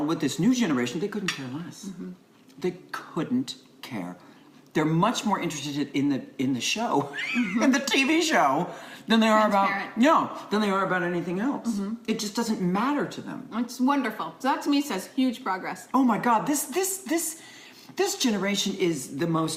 with this new generation, they couldn't care less. Mm-hmm. They couldn't care. They're much more interested in the show, in the TV show, than they are about anything else. Mm-hmm. It just doesn't matter to them. It's wonderful. So that to me says huge progress. Oh my God, this generation is the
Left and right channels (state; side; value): identical; both; correlation 1.00